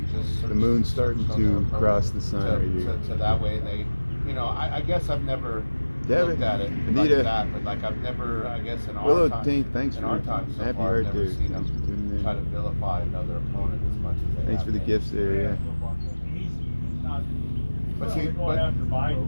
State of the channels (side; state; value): both; inverted; correlation -1.00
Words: just the moon's starting searched on their to phone cross the sun right here. to that way they, you know, I guess I've never Devin, looked at it Anita. like that, but like I've never, I guess in Willow our time, Tank, thanks in for our time so happy far, I've right never there. seen them Thanks for tuning in. try to vilify another opponent as much as they Thanks have for the been. gifts there. Yeah. He's not, But well, see, they're going but- after Biden